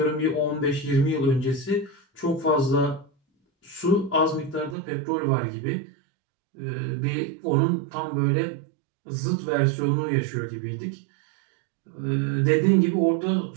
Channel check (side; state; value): left; drops out; at 4.8 s